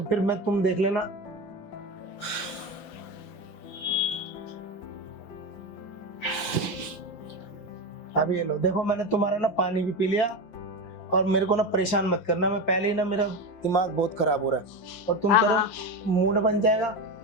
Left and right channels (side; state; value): right; late; 5.8 ms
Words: मैं, तुम देख लेना। अब ये लो, देखो मैंने तुम्हारा ना पानी भी पी लिया। और मेरे को ना परेशान मत करना, मैं पहले ही ना मेरा दिमाग बहुत खराब हो रहा है। और तुम कह रहे हो मूड बन जाएगा।